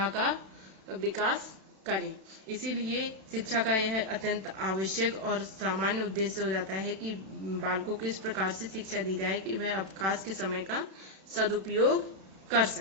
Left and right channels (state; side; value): late; left; 32 ms